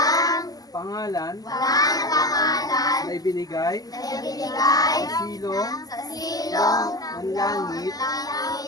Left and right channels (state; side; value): late; right; 0.18 ms